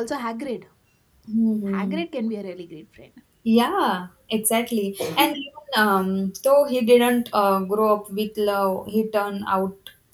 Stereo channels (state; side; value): identical; both; correlation 1.00